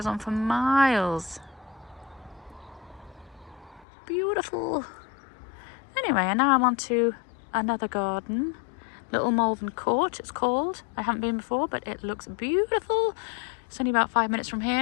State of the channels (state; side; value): drops out; right; at 3.9 s